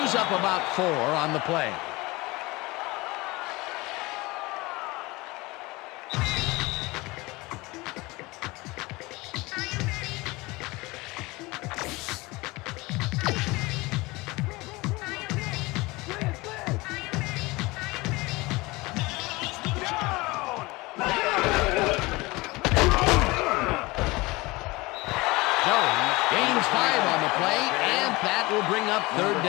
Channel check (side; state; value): right; quieter; 22.6 dB